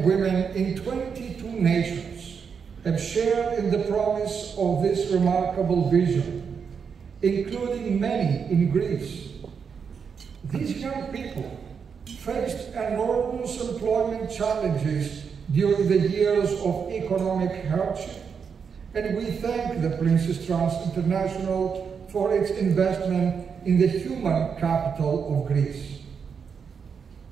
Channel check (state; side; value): quieter; left; 6.4 dB